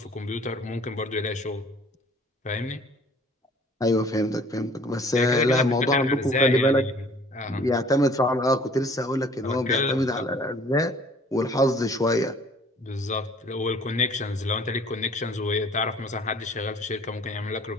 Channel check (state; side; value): normal; both; correlation 0.53